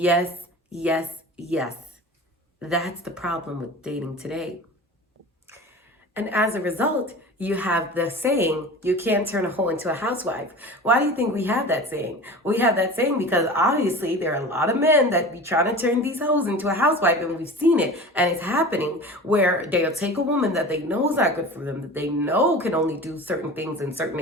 yes, yes. That's the problem with dating today. And as a result, you have the saying, you can't turn a hoe into a housewife. Why do you think we have that saying? We have that saying because obviously there are a lot of men that be trying to turn these hoes into a housewife, and we've seen it, and it's happening, where they'll take a woman that they know is not good for them, that they know can only do certain things in certain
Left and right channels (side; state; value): both; normal; correlation 0.35